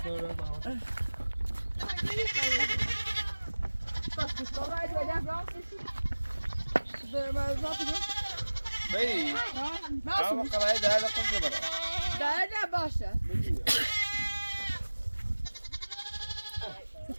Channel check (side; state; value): both; inverted; correlation -1.00